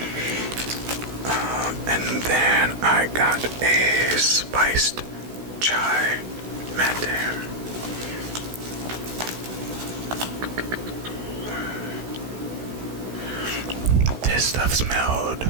And then I got a spiced chai mate. This stuff smelled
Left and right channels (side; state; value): left; late; 16 ms